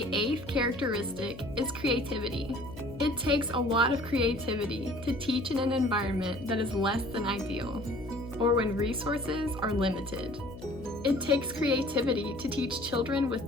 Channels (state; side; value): noise; left; hum, 14 dB below the sound